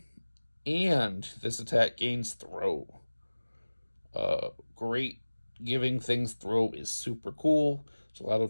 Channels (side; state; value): both; inverted; correlation -1.00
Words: and this attack gains throw. Great. Giving things throw is super cool. There's a lot